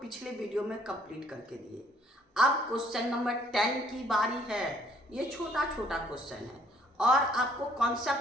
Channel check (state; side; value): normal; both; correlation 0.63